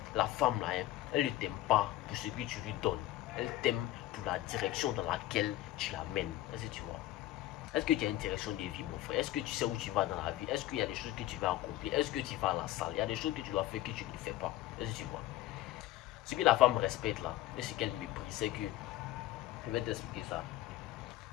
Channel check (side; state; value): right; quieter; 15.3 dB